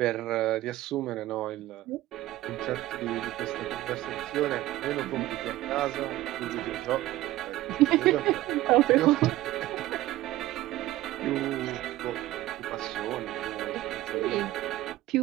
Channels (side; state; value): left; quieter; 15.9 dB